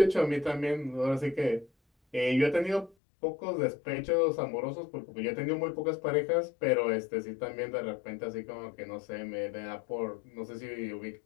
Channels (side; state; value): right; drops out; at 3.0 s